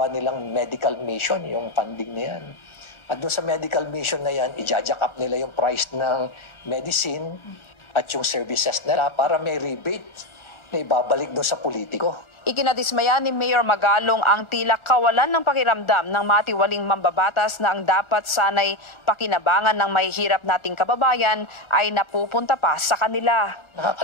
nilang medical mission, yung funding na yan. At doon sa medical mission na yan, i-jack up nila yung price ng medicine at yung services nila para may rebate na ibabalik doon sa politiko. Ikinadismaya ni Mayor Magalong ang tila kawalan ng pakiramdam ng matiwaling mambabatas na ang dapat sanay pakinabangan ng mahihirap nating kababayan ay napupunta pa sa kanila.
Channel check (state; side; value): late; right; 1.3 ms